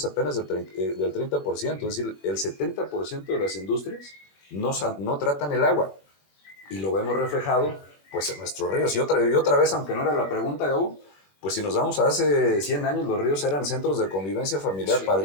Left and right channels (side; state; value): right; late; 21 ms